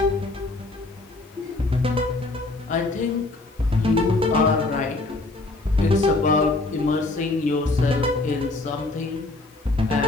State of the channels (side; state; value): right; quieter; 3.0 dB